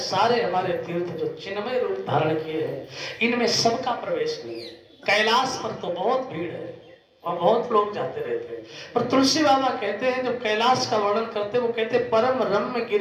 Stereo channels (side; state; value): both; identical; correlation 1.00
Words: हमारे तीर्थ जो चिन्मय रूप धारण किए हैं, इनमें सबका प्रवेश नहीं है। कैलाश पर तो बहुत भीड़ है और बहुत लोग जाते रहते हैं। पर तुलसी बाबा कहते हैं, जब कैलाश का वर्णन करते हैं, वो कहते हैं परम रम्य